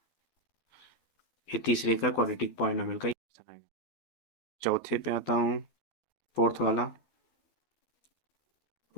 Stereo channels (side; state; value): right; late; 12 ms